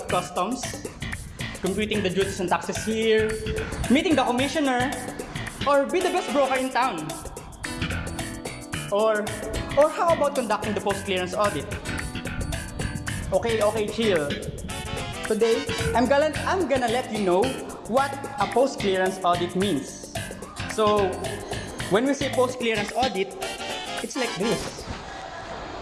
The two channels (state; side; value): identical; both; correlation 1.00